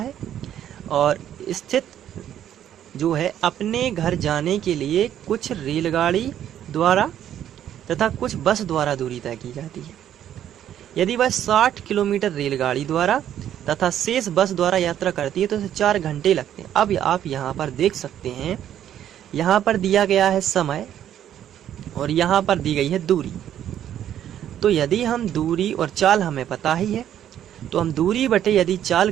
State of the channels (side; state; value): left; quieter; 10.7 dB